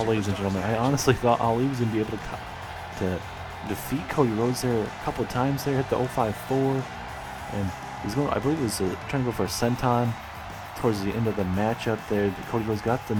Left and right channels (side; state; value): both; identical; correlation 1.00